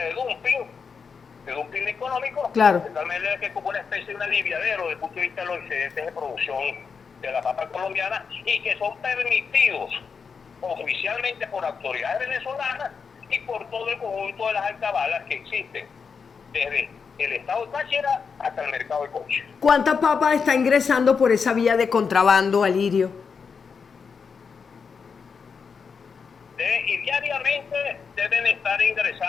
dumping económico, Claro. de tal manera que es como una especie de un aliviadero desde el punto de vista de los excedentes de producción de la papa colombiana y que son permitidos oficialmente por autoridades venezolanas y por todo el conjunto de las alcabalas que existen, desde el estado de Táchira hasta el mercado de Coche. ¿Cuánta papa está ingresando por esa vía de contrabando, Alirio? Y diariamente deben estar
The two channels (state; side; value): quieter; right; 5.7 dB